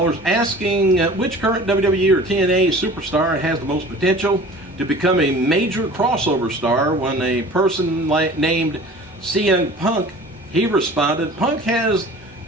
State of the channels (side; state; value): both; normal; correlation 0.43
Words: asking which current WWE or TNA superstar has the most potential to become a major crossover star. When a person named CM Punk, he responded, Punk has